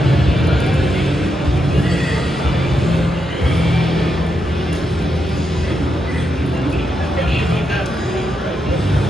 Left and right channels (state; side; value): normal; both; correlation 0.83